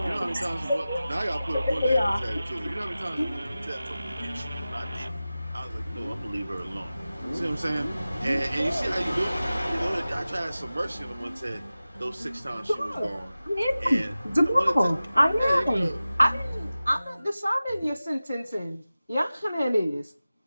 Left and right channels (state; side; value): inverted; both; correlation -0.96